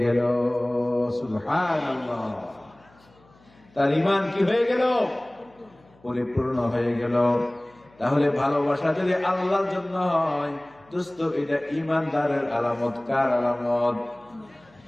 গেল। সুবহানাল্লাহ, তার ঈমান কি হয়ে গেল? পরিপূর্ণ হয়ে গেল। তাহলে ভালোবাসা যদি আল্লাহর জন্য হয় দোস্ত, এটা ঈমানদারের আলামত। কার আলামত?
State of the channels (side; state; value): left; noise; hum, 30 dB below the sound